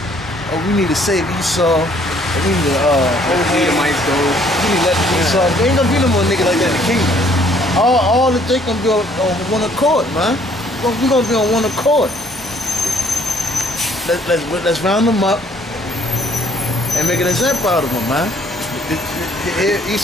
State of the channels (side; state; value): both; normal; correlation 0.61